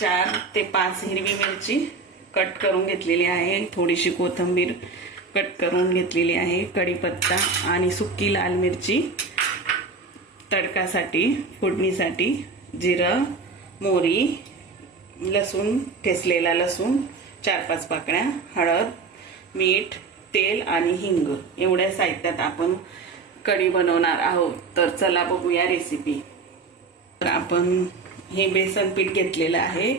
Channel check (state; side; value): quieter; left; 4.3 dB